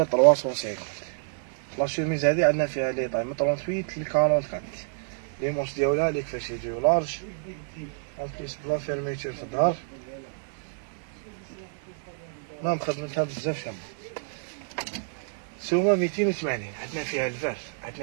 350. لا شوميز هادي عندنا فيها لي طاي من 38 ل 44. لي مونش ديالها لي كيفاش يجيو لارج اون بليس بلا فيرميتور في الظهر. المهم خدمتها بزاف شابة. سومة 280. عندنا فيها الفار،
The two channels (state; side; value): silent; left; digital silence